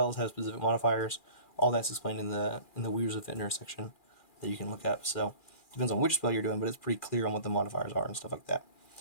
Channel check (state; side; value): late; right; 2.4 ms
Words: have specific modifiers. All that's explained in the Weavers of Vitner section that you can look up. So it depends on which spell you're doing, but it's pretty clear on what the modifiers are and stuff like that.